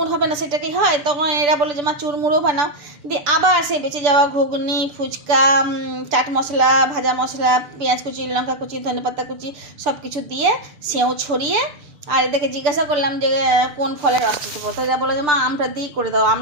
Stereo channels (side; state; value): left; late; 6.8 ms